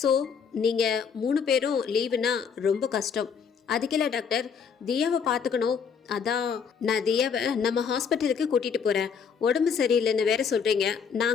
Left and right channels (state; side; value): quieter; right; 6.6 dB